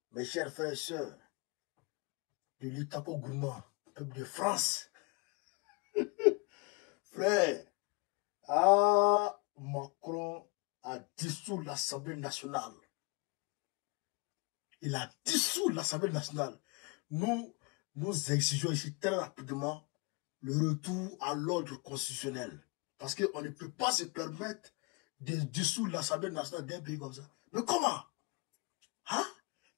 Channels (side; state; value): right; quieter; 27.8 dB